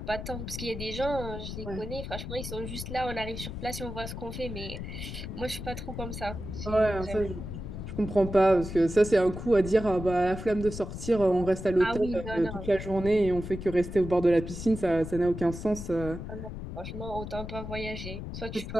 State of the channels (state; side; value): noise; left; rumble, 8 dB below the sound